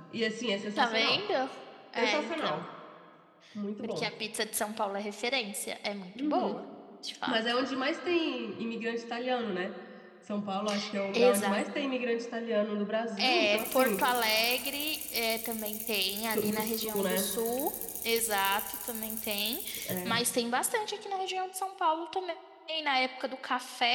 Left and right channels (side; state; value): both; identical; correlation 1.00